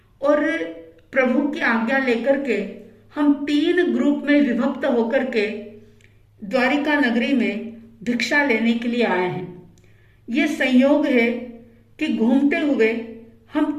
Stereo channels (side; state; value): both; identical; correlation 1.00